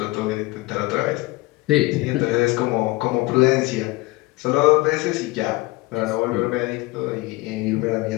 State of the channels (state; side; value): quieter; right; 21.3 dB